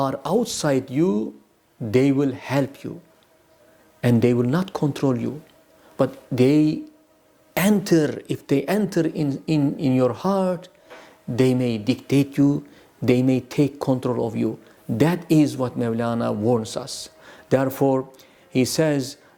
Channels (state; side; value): identical; both; correlation 1.00